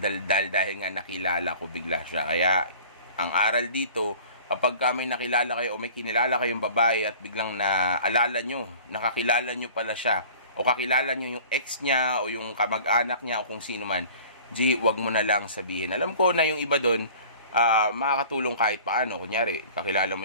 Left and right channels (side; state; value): both; inverted; correlation -0.45